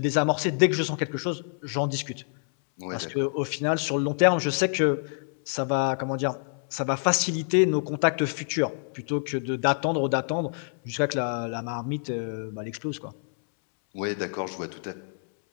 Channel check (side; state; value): right; silent; 60 dB below the other